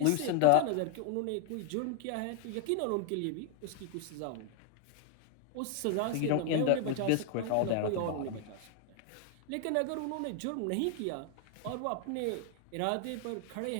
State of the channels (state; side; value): different; both; correlation 0.00